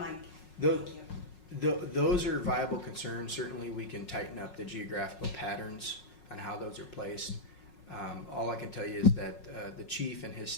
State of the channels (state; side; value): late; right; 5.5 ms